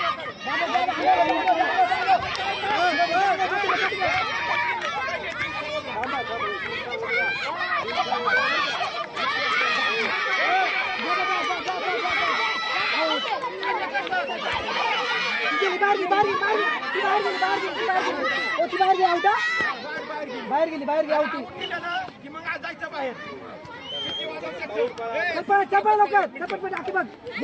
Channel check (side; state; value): both; identical; correlation 1.00